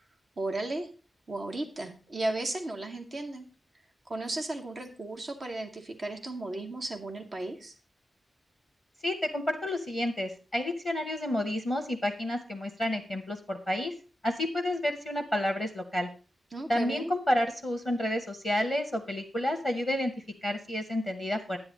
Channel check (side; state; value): both; normal; correlation 0.89